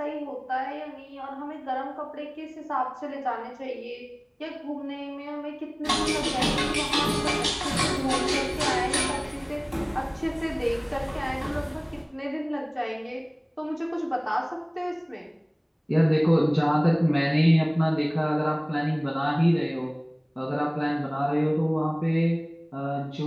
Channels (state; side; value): identical; both; correlation 1.00